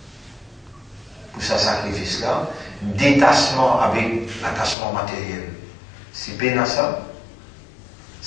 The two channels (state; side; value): drops out; right; at 4.8 s